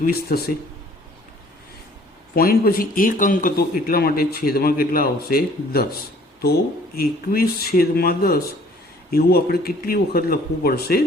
થશે। પોઈન્ટ પછી એક અંક હતો એટલા માટે છેદમાં કેટલા આવશે, 10, તો 21/10 એવું આપણે કેટલી વખત લખવું પડશે,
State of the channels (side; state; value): both; normal; correlation 0.55